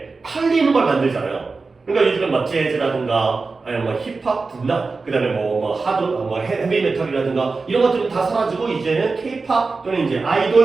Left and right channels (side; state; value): left; quieter; 4.1 dB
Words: 팔리는 걸 만들잖아요. 그러니까 요즘은 막 재즈라든가 아니면 뭐 힙합, 분나 그다음에 뭐 하드, 뭐 헤비 메탈이라든가 이런 것들은 다 사라지고 이제는 케이팝 또는 이제